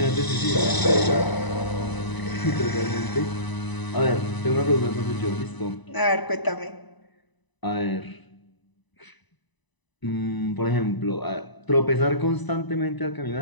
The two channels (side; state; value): right; late; 1.0 ms